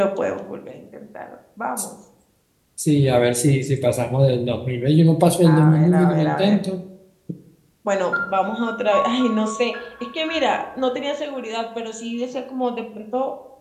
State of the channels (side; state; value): both; identical; correlation 1.00